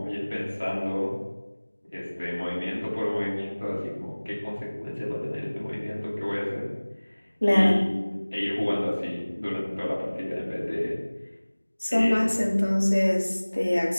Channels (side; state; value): both; inverted; correlation -1.00